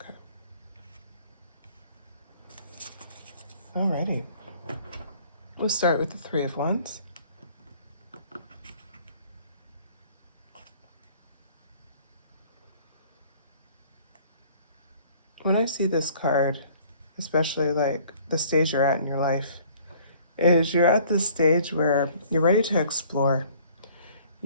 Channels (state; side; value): inverted; both; correlation -0.55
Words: Okay. Alrighty. We'll start with the Three of Wands. When I see this card, especially like the stage you're at in your life, is you're at this stage where you're ready to explore.